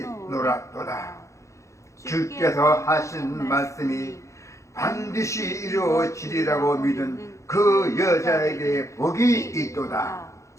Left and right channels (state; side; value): late; right; 0.15 ms